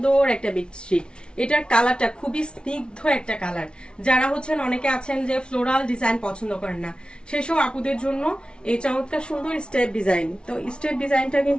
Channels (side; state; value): right; late; 0.056 ms